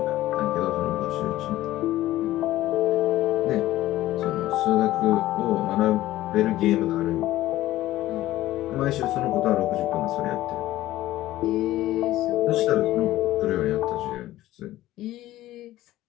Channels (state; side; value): quieter; right; 15.3 dB